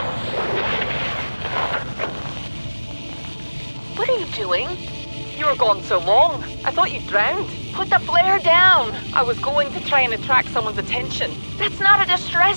What are you doing? You were gone so long. I thought you drowned. Put the flare down! I was going to try and attract someone's attention. That's not a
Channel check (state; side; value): inverted; both; correlation -1.00